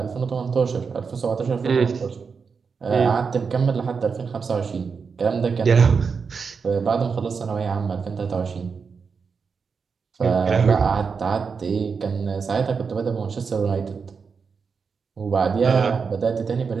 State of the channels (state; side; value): quieter; left; 5.5 dB